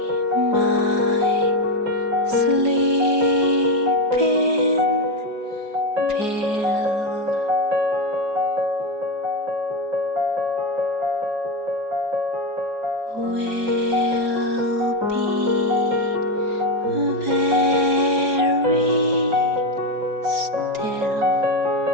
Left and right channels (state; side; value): late; left; 4.8 ms